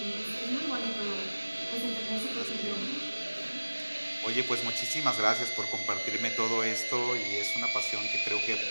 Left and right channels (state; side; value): inverted; both; correlation -1.00